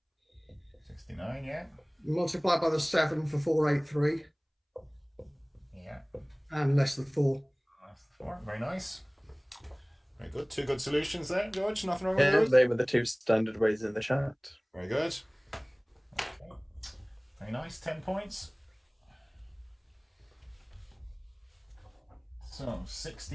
69, yeah. Multiplied by the 7 for 483. Yeah. And less than 4. That's 4. Very nice. Very good. 2 good solutions there, George. Nothing wrong with Yeah, those? they were the 2 standard ways in the chat. Very good. Okay. Very nice. 10 points. So,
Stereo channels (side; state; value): both; identical; correlation 1.00